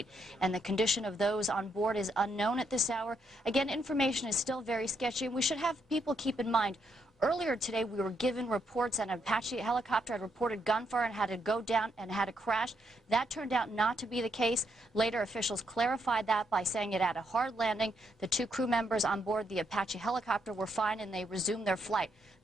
and the condition of those on board is unknown at this hour. Again, information is still very sketchy, and we should have people keep in mind, earlier today, we were given reports that an Apache helicopter had reported gunfire and had to go down and had to crash. That turned out not to be the case. Later, officials clarified that by saying it had a hard landing. The two crew members on board the Apache helicopter were fine and they resumed their flight.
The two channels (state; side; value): normal; both; correlation 0.77